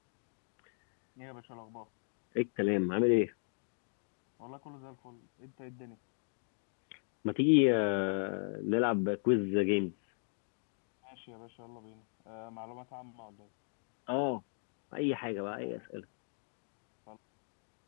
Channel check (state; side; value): silent; right; digital silence